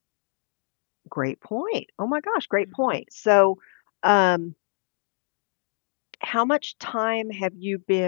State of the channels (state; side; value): silent; right; 61 dB below the other